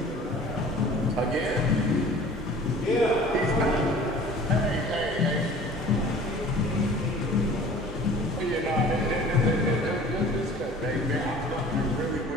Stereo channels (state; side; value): normal; both; correlation 0.46